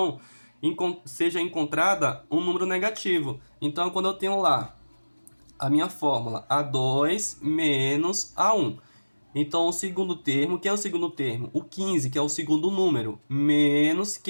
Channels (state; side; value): inverted; both; correlation -1.00